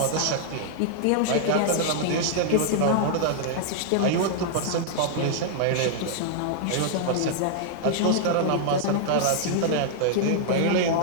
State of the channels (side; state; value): both; different; correlation -0.01